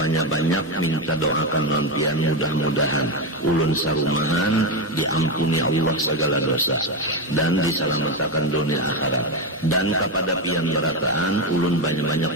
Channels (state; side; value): normal; both; correlation 0.12